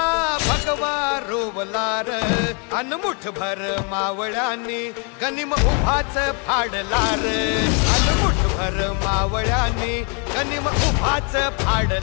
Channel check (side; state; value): right; quieter; 36.7 dB